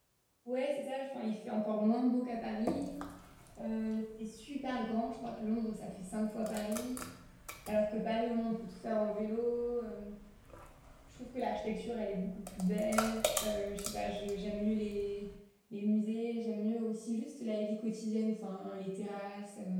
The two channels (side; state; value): both; identical; correlation 1.00